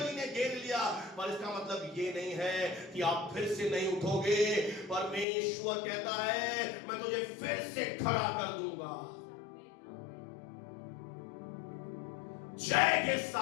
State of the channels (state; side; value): drops out; right; at 5.2 s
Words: ने घेर लिया, पर इसका मतलब ये नहीं है कि आप फिर से नहीं उठोगे। परमेश्वर कहता है मैं तुझे फिर से खड़ा कर दूंगा जय के